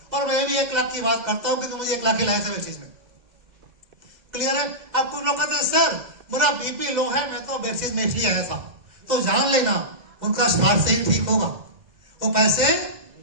और मैं भी 1 लाख की बात करता हूं क्योंकि मुझे 1 लाख ही लाया था चीज में। क्लियर है? अब कुछ लोग कहते हैं सर मेरा बीपी लो है, मैं तो बेसिस में इसलिए आया था। तो जान लेना उनका स्वास्थ्य से ही ठीक होगा, वो पैसे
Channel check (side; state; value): left; late; 2.0 ms